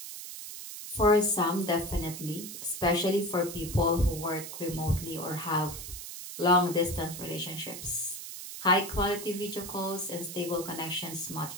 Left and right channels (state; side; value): noise; right; hiss, 9 dB below the sound